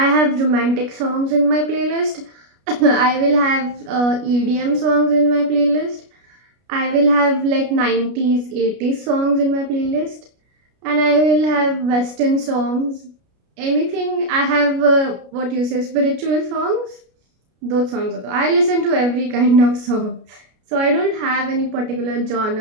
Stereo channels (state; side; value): late; left; 33 ms